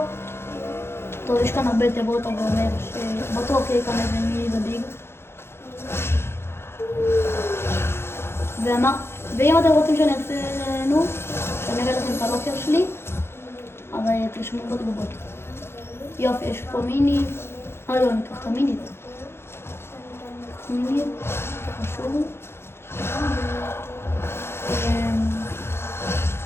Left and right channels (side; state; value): right; late; 0.12 ms